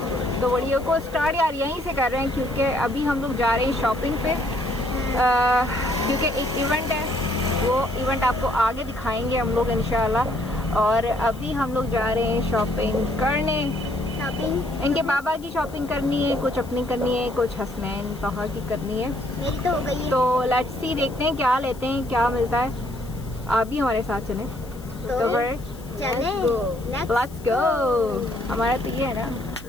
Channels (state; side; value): noise; left; hiss, 22 dB below the sound